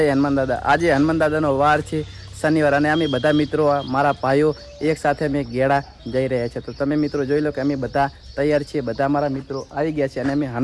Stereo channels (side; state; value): both; identical; correlation 1.00